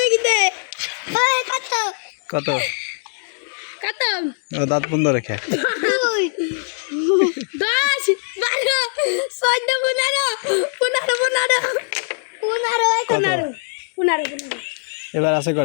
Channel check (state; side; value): silent; right; digital silence